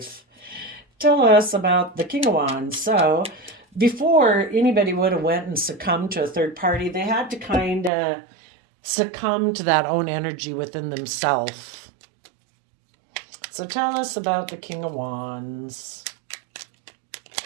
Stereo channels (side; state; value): left; drops out; at 7.9 s